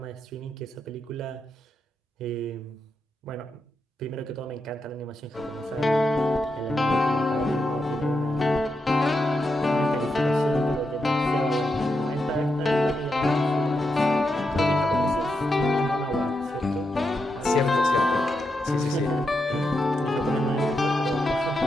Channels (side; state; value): both; normal; correlation 0.85